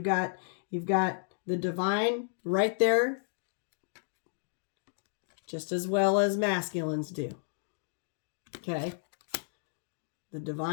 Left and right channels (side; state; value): right; silent; digital silence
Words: got the divine right there, just as well as masculines do. Okay. The